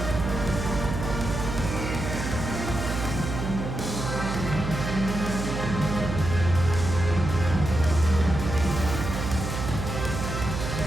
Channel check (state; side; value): noise; right; hum, 4 dB below the sound